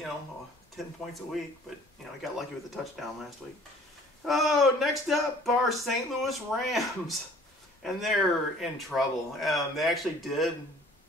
10 points a week. But, he got lucky with the touchdown last week. Oh, next up are St. Louis Rams. And they're in trouble. They actually did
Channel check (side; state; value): both; normal; correlation 0.52